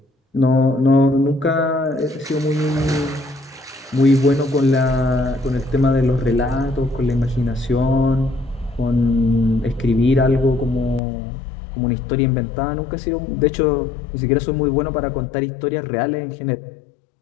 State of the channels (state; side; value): drops out; right; at 11.0 s